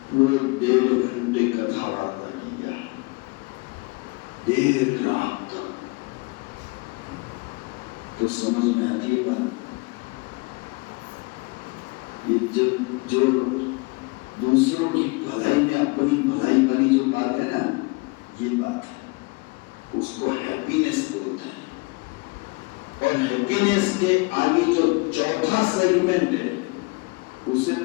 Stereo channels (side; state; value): right; quieter; 27.5 dB